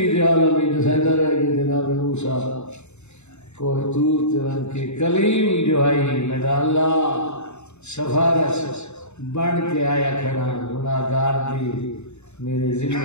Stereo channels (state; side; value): late; right; 0.82 ms